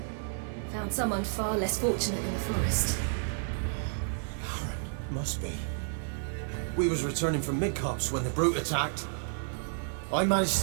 Found someone far less fortunate in the forest. Must be. We was returning from Midcops when the brute attacked. I managed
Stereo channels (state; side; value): silent; left; 57 dB below the other